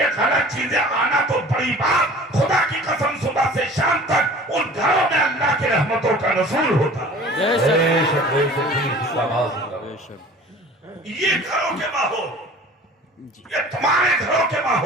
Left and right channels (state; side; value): normal; both; correlation 0.45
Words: غلط چیزیں آنا تو بڑی بات، خدا کی قسم صبح سے شام تک ان گھروں میں اللہ کی رحمتوں کا نزول ہوتا ہے، یہ گھروں کے ماحول، یہ تمہارے گھروں کے